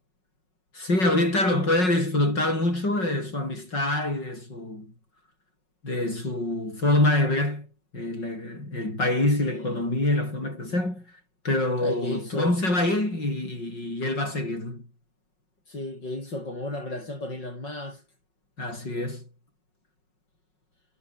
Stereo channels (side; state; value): right; late; 5.4 ms